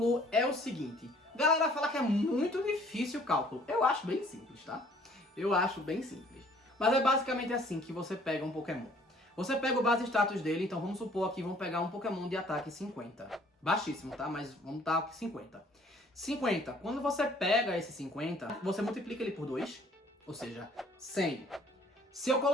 é o seguinte. A galera fala que é muito difícil o cálculo. Eu acho bem simples, tá? Eu acho bem simples. Mas é basicamente assim que você pega um Pokémon. Você pega o base status dele, então vamos supor aqui, vamos pegar um Pokémon de ataque 50. Baixíssimo, tá? Mas vamos dar aqui 50. 50. Quando você pega esse 50, você multiplica ele por 2, ou seja, 100. Se eu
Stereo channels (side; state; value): both; normal; correlation 0.57